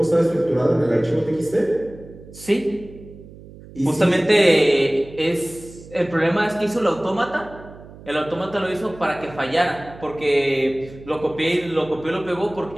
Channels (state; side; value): noise; right; hum, 18 dB below the sound